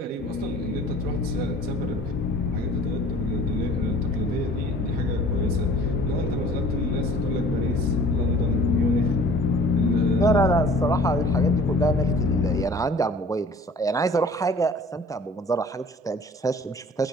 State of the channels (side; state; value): both; normal; correlation 0.49